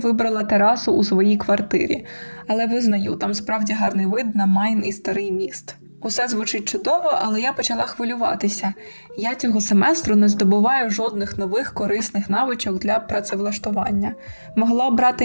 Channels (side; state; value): both; inverted; correlation -1.00